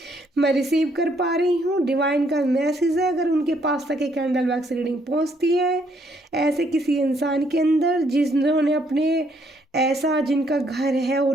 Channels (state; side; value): normal; both; correlation 0.69